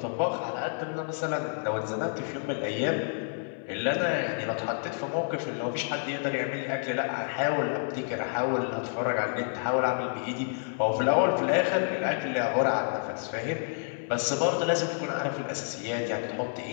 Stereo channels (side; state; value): right; silent; 58 dB below the other